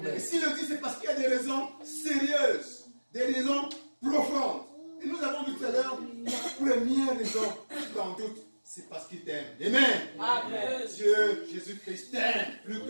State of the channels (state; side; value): inverted; both; correlation -1.00